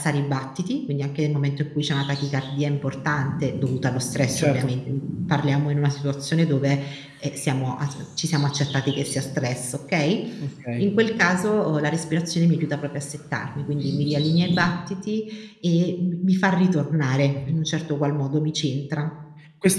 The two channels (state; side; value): identical; both; correlation 1.00